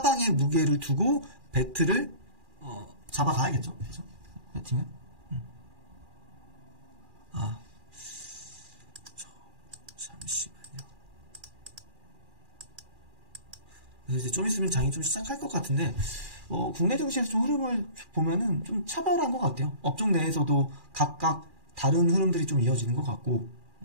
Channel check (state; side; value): late; left; 2.4 ms